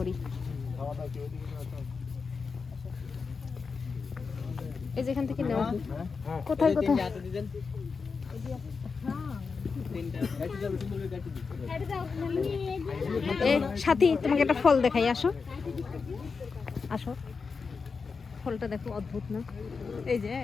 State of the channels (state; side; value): quieter; right; 5.0 dB